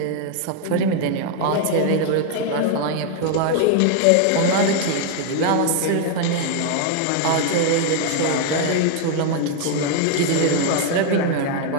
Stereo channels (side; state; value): both; different; correlation 0.00